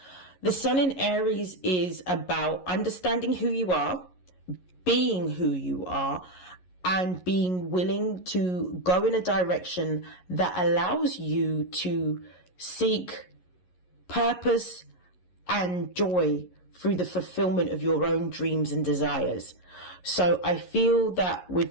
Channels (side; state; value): right; late; 11 ms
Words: The Sun in Aries is about understanding who you are, being who you are, and being willing to go in a direction that allows you to seek purpose and joy through the fulfillment of your own dreams and desires. So I feel that with